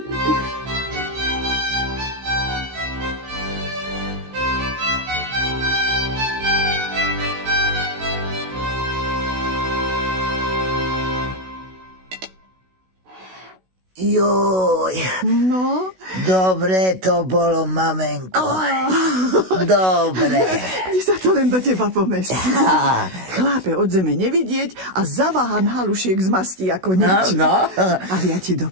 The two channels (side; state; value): left; late; 16 ms